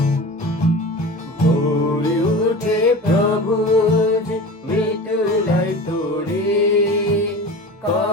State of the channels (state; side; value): normal; both; correlation 0.34